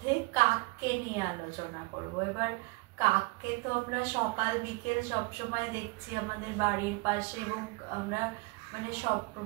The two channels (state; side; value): quieter; left; 26.3 dB